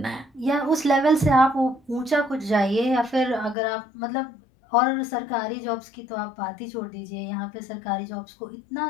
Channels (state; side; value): drops out; right; at 3.6 s